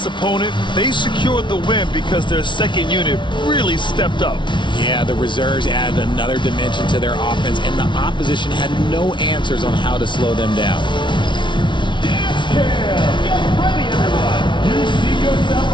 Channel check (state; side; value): late; right; 0.24 ms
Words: opponent, they secured the win because their second unit really stepped up. Yeah, the reserves added another dimension to their offense, and the opposition had no answers on how to slow them down. Dance Cam! Get ready, everyone! You see yourself